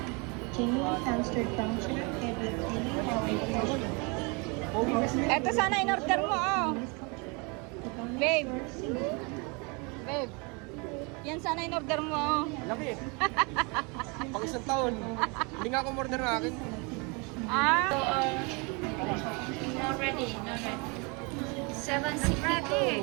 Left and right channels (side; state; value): left; quieter; 30.7 dB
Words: Genuine hamster function, paired with daily Ito sana in-order mo, oh. Babe. Babe. Yan sana in-order mo, oh. Laki. Pang isang taon. Hindi nga ako order na akin. Ah. Not ready. 7 Ready.